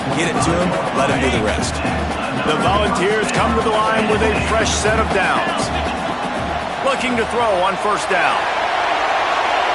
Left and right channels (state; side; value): identical; both; correlation 1.00